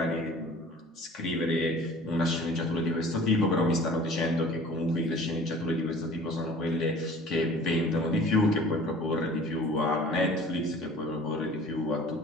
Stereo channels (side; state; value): both; normal; correlation 0.47